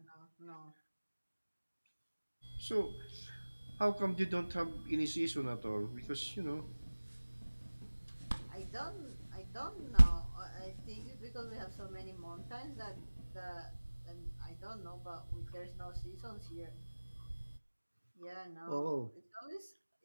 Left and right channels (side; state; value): both; inverted; correlation -1.00